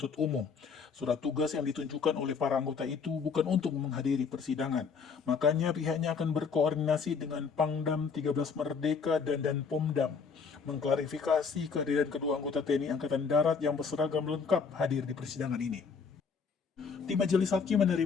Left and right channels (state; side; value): quieter; right; 5.6 dB